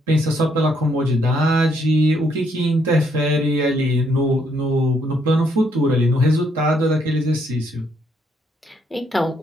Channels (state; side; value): normal; both; correlation 0.72